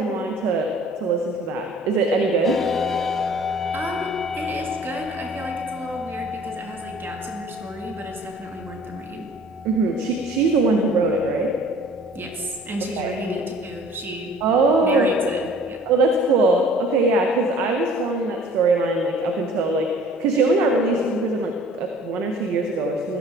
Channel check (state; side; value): normal; both; correlation 0.50